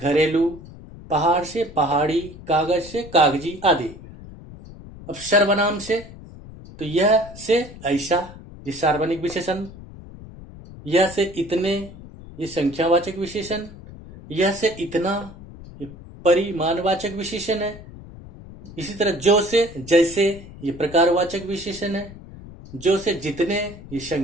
पहाड़ से पहाड़ी, कागज से कागजी आदि। अब सर्वनाम से तो यह से ऐसा, ये सार्वजनिक विशेषण। यह से इतने, ये संख्यावाचक विशेषण। यह से इतना, ये परिमाणवाचक विशेषण है। इसी तरह जो से जैसे, ये प्रकारवाचक विशेषण है। जो से जितने, ये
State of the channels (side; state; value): left; noise; rumble, 16 dB below the sound